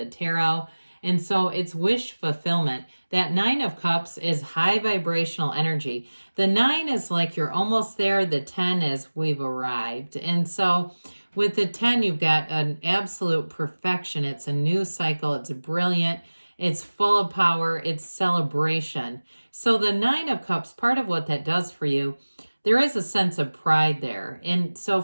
tarot. And so it's wish fulfillment. That 9 of cups is high vibrational energy. The 9 is like you're almost there. The 10 is we've arrived. And so with the 10, you've got an absolute perfection. It's a new cycle. It's brilliant. It's full of power. It's celebration. So the 9 of cups, part of what that does for you, there is a sense of pride there. And so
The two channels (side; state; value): both; inverted; correlation -1.00